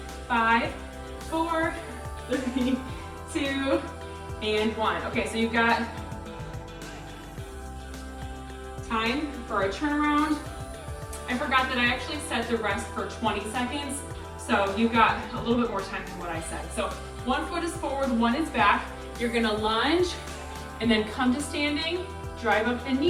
5, 4, 3, 2, and 1. Okay, so you've got time for a turnaround. I forgot that I actually set the rest for 20 seconds, so you've got a little bit more time than what I said. So 1 foot is forward, 1 is back. You're gonna lunge and then come to standing, drive up the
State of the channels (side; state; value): both; identical; correlation 1.00